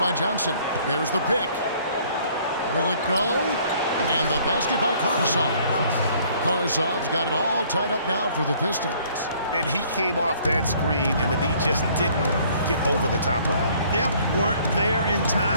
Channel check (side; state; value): both; inverted; correlation -0.59